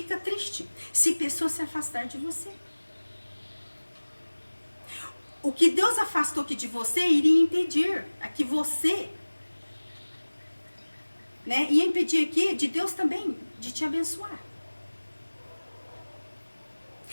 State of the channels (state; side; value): inverted; both; correlation -1.00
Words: triste se pessoas se afastar de você. O que Deus afastou aqui de você iria impedir a que você, né, ia impedir aqui de Deus também de te abençoar.